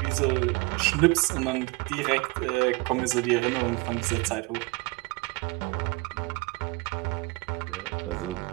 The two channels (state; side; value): quieter; left; 25.3 dB